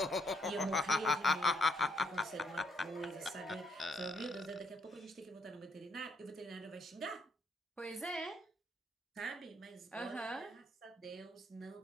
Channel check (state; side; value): normal; both; correlation 0.72